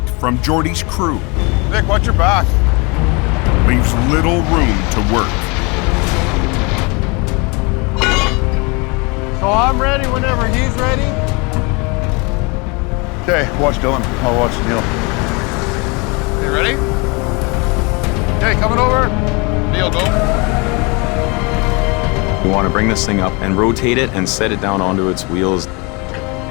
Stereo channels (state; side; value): quieter; right; 29.2 dB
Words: from Jordy's crew, Nick, watch your back. leaves little room to work. So I'm ready whenever he's ready. Okay, watch Dylan. I'll watch Neil. You ready? Okay, coming over. Neil, go. We want to bring this thing up and rotate it and set it down onto its wheels.